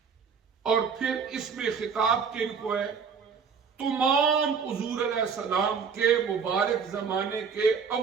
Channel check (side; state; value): left; quieter; 6.1 dB